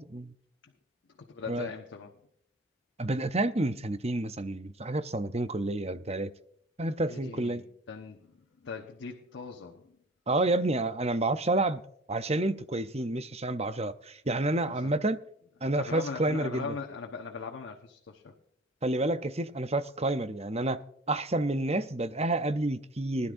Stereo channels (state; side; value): normal; both; correlation 0.43